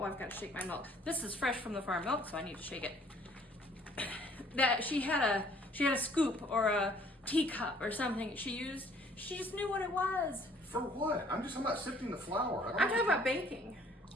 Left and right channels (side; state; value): both; normal; correlation 0.59